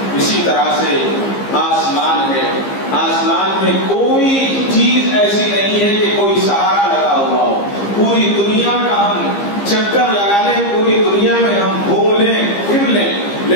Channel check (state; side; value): late; right; 15 ms